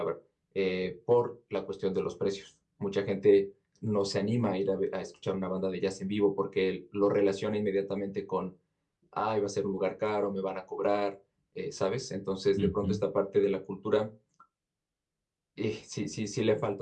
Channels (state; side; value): identical; both; correlation 1.00